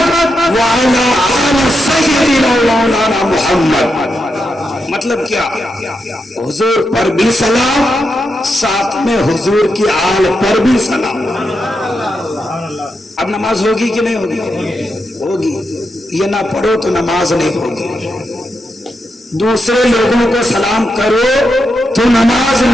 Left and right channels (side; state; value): both; normal; correlation 0.85